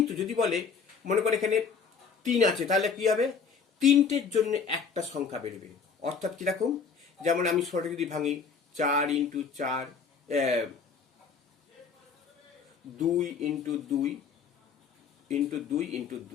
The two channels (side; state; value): right; quieter; 5.7 dB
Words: যদি বলে মনে করে এখানে 3 আছে, তাহলে কি হবে? 3টের জন্য একটা সংখ্যা বেরোবে। অর্থাৎ কিরকম? যেমন আমি ছোট যদি ভাঙি 4 ইন্টু 4, 2 ইন্টু 2 ইন্টু 2 ইন্টু